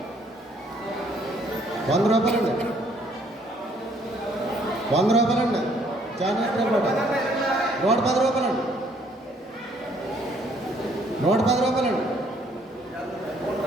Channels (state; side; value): normal; both; correlation 0.64